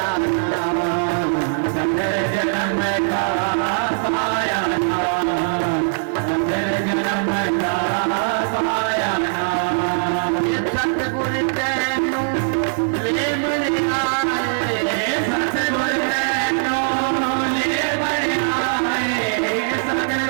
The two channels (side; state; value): left; silent; 59 dB below the other